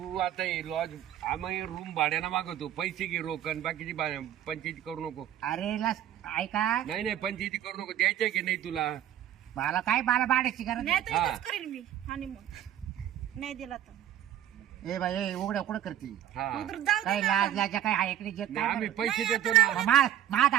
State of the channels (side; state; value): left; quieter; 11.4 dB